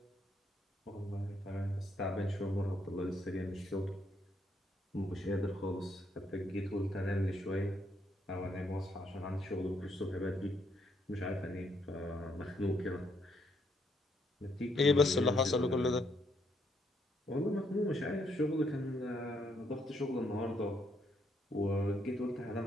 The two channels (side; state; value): both; normal; correlation 0.73